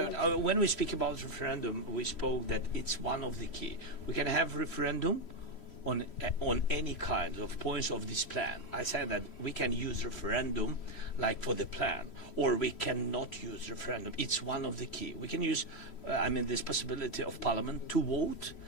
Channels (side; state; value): right; late; 3.1 ms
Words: When we speak about referendum, we spoke that it's one of the key. We can have referendum on any kind of points of this plan. I said that we can use referendum like for the plan, or we cannot use referendum. It's one of the key. We can use, this possibility of Parliament to vote